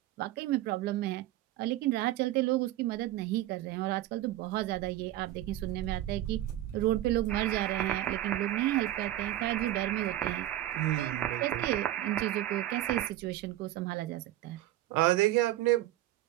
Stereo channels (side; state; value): left; quieter; 14.4 dB